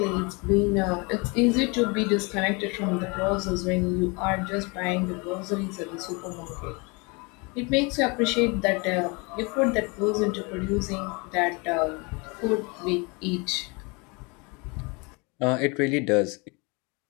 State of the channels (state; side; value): quieter; right; 29.2 dB